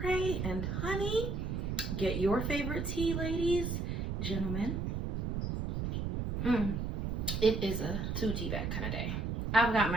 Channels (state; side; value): noise; right; rumble, 2 dB below the sound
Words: and honey. Get your favorite tea, ladies, gentlemen. It is a two tea bag kind of day. I've got